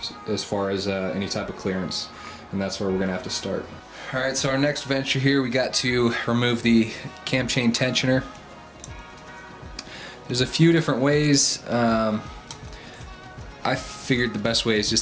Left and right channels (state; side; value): identical; both; correlation 1.00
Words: as far as any type of clearance, and that's where we're gonna have to start. Alright, so our next venture here, we got to remove the cam chain tensioner. There's a few different ways. I figured the best way is